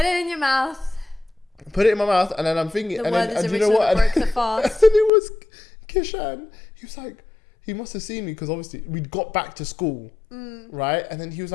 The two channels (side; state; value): right; drops out; at 5.1 s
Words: it in your mouth. Put it in my mouth, and then I'm thinking, The and Werther's then, and you original know what? that broke the fast. And then it was Kishan. He was like, he must have seen me because obviously we'd got back to school, right? And then he was